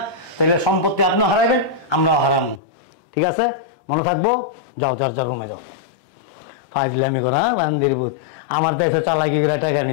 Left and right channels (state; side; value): drops out; right; at 2.6 s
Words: তাহলে সম্পত্তি আপনিও হারাইবেন আমরাও হারাবো। ঠিক আছে, মনে থাকবো। যাও যার যা রুমে যাও। ফাজলামি করা বান্দির বুঝ। আমার দেশে চালাকি করে টাকা